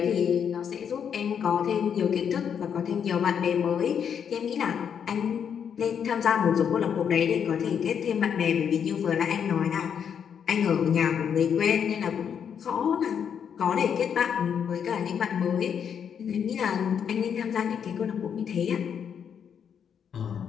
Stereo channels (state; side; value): quieter; right; 7.8 dB